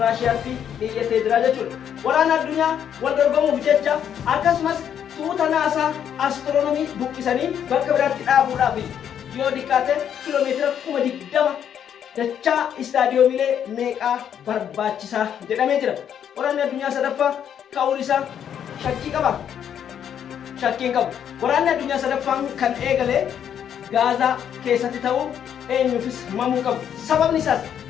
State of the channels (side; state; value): right; quieter; 9.0 dB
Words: Raashiyaatti dhiyeessee jira jechuudha. Waraana addunyaa wal dorgomuuf jecha akkasumas tuuta naasaa astiroonomii buqqisanii bakka biraatti dhaabuudhaaf yoo xiqqaate kiiloomeetira 20,000 dachaa istaadiyoomiilee meeqaa barbaachisaa jedhamee jira. Waraanni addunyaa sadaffaa ka'uun isaa shakkii qaba. Shakkiin qabu. Waraanni addunyaa sadaffaan kan eegale Gaazaa keessatti ta'uu eenyuufis mamuu qabu. Sababni isaas